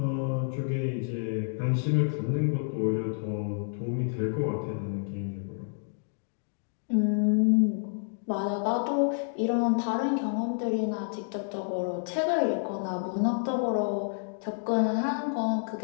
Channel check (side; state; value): right; silent; digital silence